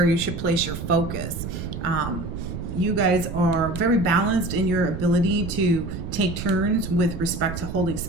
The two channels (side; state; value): right; noise; rumble, 7 dB below the sound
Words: you should place your focus. You guys are very balanced in your ability to take turns with respect to holding